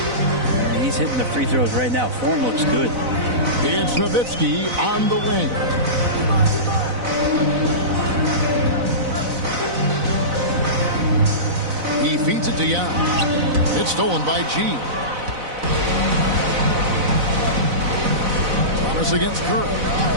he's hitting the free throws right now. Form looks good. It's Nowitzki on the wing. He feeds it to Young. It's stolen by G. Thomas against Curry.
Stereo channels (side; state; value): left; late; 4.0 ms